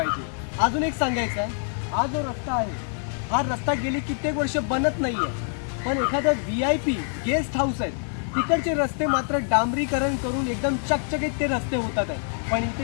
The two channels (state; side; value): silent; right; 60 dB below the other